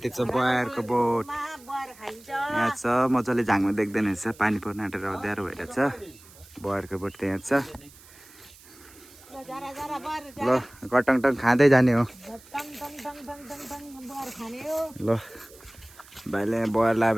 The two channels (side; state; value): right; noise; hiss, 23 dB below the sound